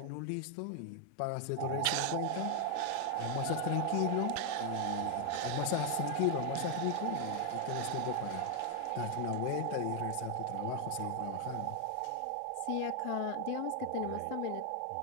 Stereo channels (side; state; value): both; different; correlation 0.00